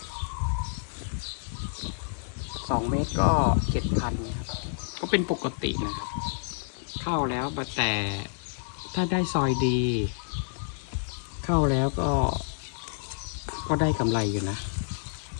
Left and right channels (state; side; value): silent; right; 59 dB below the other